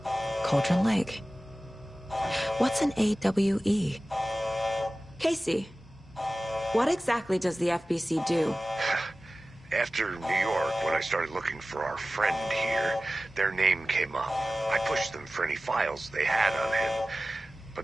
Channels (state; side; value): normal; both; correlation 0.96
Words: Cauldron Lake. What's an AWE? Casey, what exactly does the FBC do? After New York, when I started looking for our friend here, their name came up. I pushed them for any files they had on him,